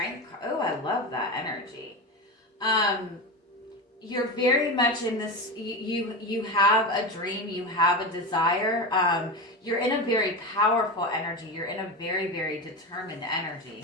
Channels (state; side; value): normal; both; correlation 0.21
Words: card. Oh, I love that energy. You're very much in this, you have a dream, you have a desire. You're in a very powerful energy. You're in a very, very determined energy.